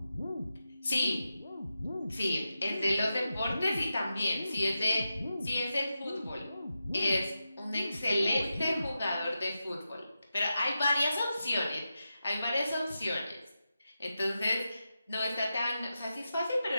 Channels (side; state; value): both; inverted; correlation -0.90